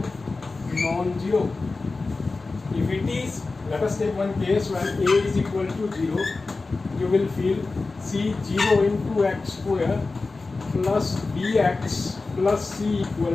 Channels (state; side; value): quieter; right; 3.7 dB